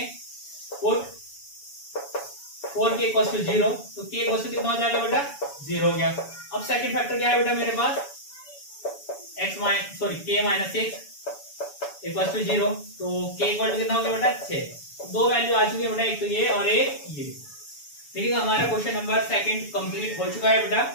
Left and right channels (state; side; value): late; right; 7.1 ms